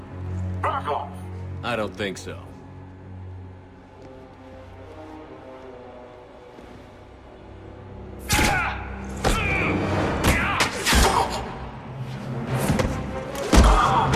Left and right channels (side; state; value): both; identical; correlation 1.00